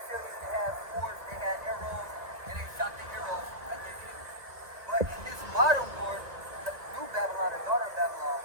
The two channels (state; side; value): late; left; 2.2 ms